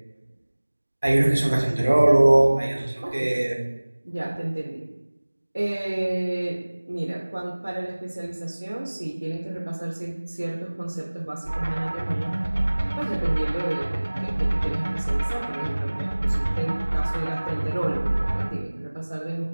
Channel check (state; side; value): inverted; both; correlation -1.00